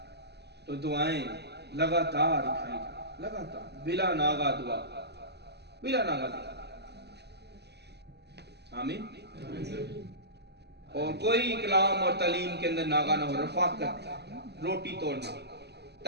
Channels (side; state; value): left; late; 0.49 ms